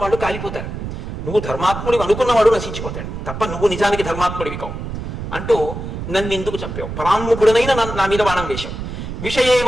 వాళ్ళు కాలిపోతారు. నువ్వు ధర్మాత్ముడివి అనుకున్నవాడు నశించిపోతాడు తప్ప నువ్వు నిజానికి ధర్మాత్ముడివి కావు అంటూ నన్ను ఎందుకు చంపావు? పరాన్ముఖుడనైనా నా మీద బాణం వేశావు.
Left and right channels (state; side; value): noise; right; rumble, 7 dB below the sound